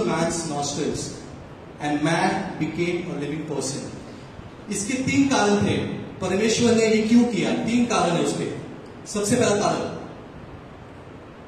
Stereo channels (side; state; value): both; identical; correlation 1.00